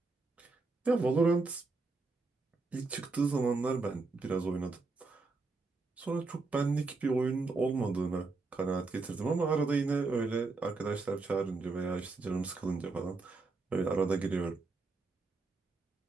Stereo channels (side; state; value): left; quieter; 3.8 dB